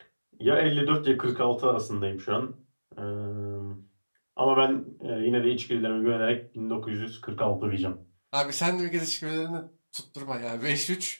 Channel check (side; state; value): both; inverted; correlation -1.00